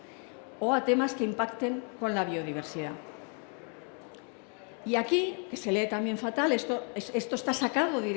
o a temas que impacten con la biodiversidad. Y aquí, que se lee también fatal, esto está sacado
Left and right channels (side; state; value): right; quieter; 40.0 dB